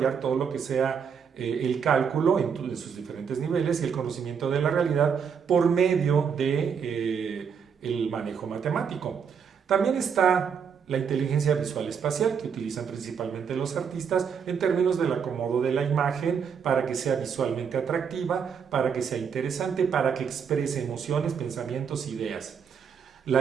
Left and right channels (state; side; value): quieter; left; 6.8 dB